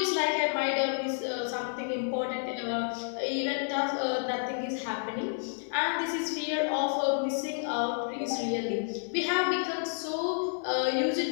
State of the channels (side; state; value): right; silent; digital silence